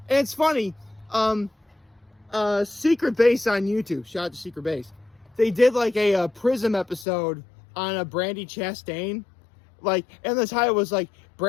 and it's funny, Secret Base on YouTube, shout out to Secret Base. They did like a Prism episode on a Brandy Chastain. Like, and the title was like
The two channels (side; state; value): right; drops out; at 7.1 s